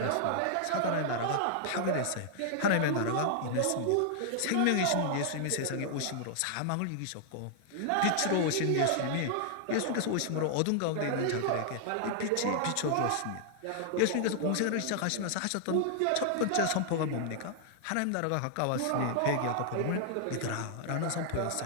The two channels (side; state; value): both; different; correlation -0.01